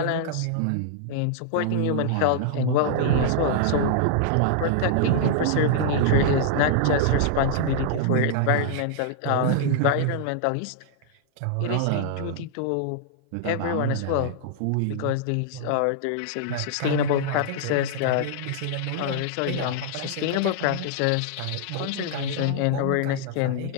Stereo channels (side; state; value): both; different; correlation -0.01